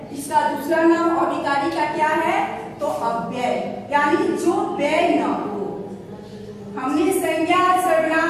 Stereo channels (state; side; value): identical; both; correlation 1.00